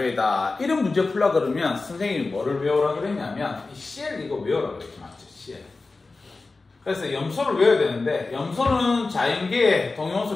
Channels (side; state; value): right; quieter; 3.7 dB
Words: 이런 문제 풀라 그러면 선생님이 뭐를 외우라 그랬냐면 이 CL 이거 외우라 그랬지, 맞죠? CL. 그래서 염소를 외워야 되는데 염소는 자연계에 동위원소